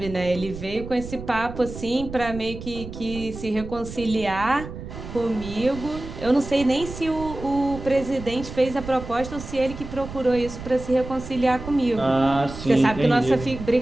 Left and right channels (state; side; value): noise; right; rumble, 11 dB below the sound